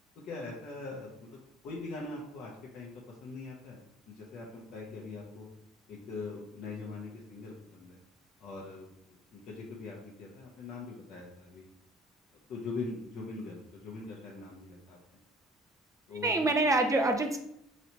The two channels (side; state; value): both; normal; correlation 0.50